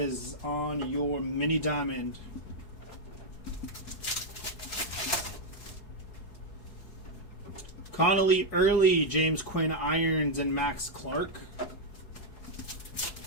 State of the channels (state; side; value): late; right; 4.7 ms